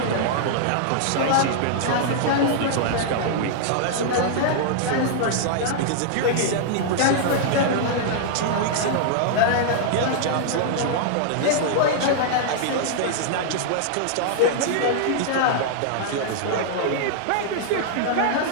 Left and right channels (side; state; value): both; different; correlation -0.01